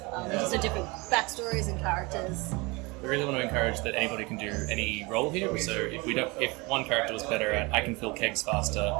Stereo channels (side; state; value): left; quieter; 25.8 dB